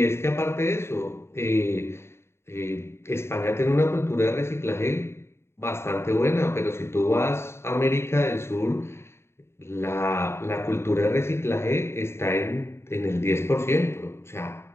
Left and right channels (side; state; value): right; late; 0.12 ms